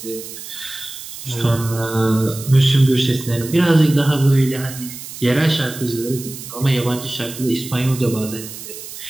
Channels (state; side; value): noise; right; hiss, 12 dB below the sound